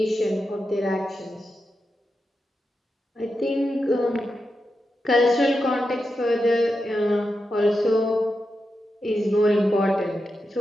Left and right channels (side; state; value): both; normal; correlation 0.88